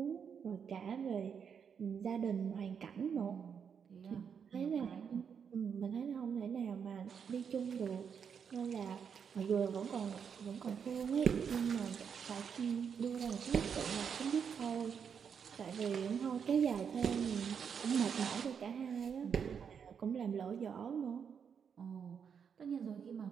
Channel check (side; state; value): left; quieter; 7.0 dB